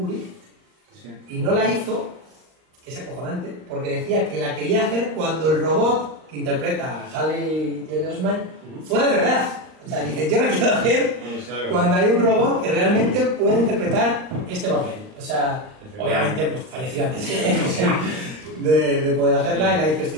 y no la hizo, que es acojonante, porque decía que la quería hacer cuando el robot que interpreta a Haley Joel Osment fuera de verdad. O sea, dice, yo la quiero hacer cuando hay un robot que realmente puede interpretar este papel. O sea, obviamente, pues falleció antes de poder hacerla y la hizo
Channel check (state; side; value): late; left; 39 ms